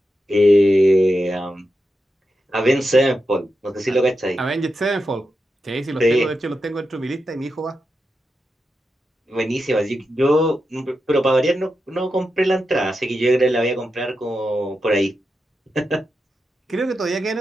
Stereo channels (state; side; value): normal; both; correlation 0.88